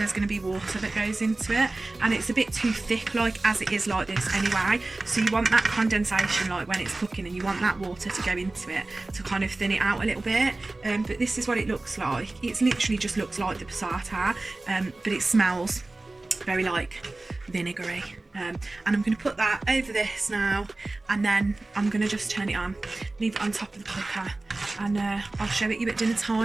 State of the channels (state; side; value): quieter; left; 3.0 dB